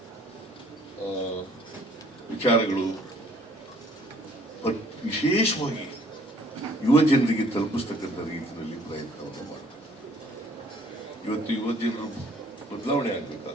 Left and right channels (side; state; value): both; normal; correlation 0.59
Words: ವಿಚಾರಗಳು ವಿಶೇಷವಾಗಿ ಯುವ ಜನರಿಗೆ ತಲುಪಿಸ್ತಕ್ಕಂಥ ರೀತಿಯಲ್ಲಿ ಪ್ರಯತ್ನವನ್ನು ಮಾಡ್ತಾರೆ. ಇವತ್ತು ಯುವ ಜನರು ಬದಲಾವಣೆ